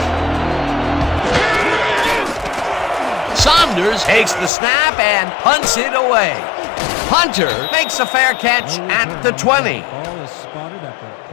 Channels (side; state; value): right; drops out; at 4.5 s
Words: Saunders takes the snap and punts it away. Hunter makes a fair catch at the 20. Ball is spotted at the